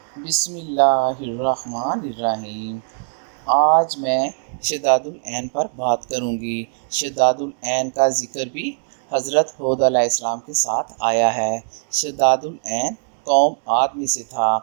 بسم اللہ الرحمن الرحیم۔ آج میں شداد العین پر بات کروں گی۔ شداد العین کا ذکر بھی حضرت ہود علیہ السلام کے ساتھ آیا ہے۔ شداد العین قوم عاد میں سے تھا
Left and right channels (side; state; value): left; silent; digital silence